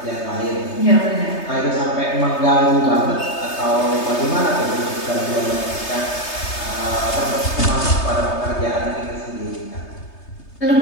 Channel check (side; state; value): right; late; 3.3 ms